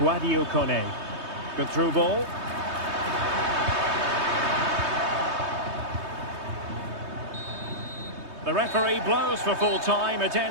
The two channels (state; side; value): late; left; 3.2 ms